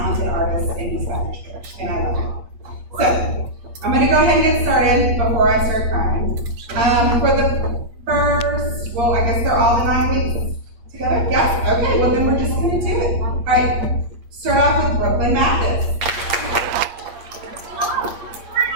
artists in the Spanish church, and I love it. So, I'm going to go ahead and get started before I start crying. For the first, well, I guess they're all the 9 weeks together? Yes? Okay, well then we're just going to do it. All right, start off with Brooklyn Mathis.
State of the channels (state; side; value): late; left; 8.5 ms